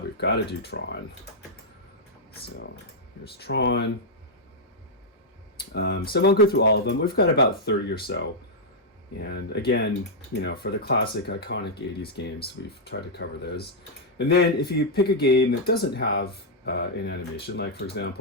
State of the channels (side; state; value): both; normal; correlation -0.05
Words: we've got to do Tron. So here's Tron. So I won't go through all of them. We've got about 30 or so. And again, for the classic iconic 80s games, we've tried to cover those. And then if you pick a game that doesn't have an animation, like for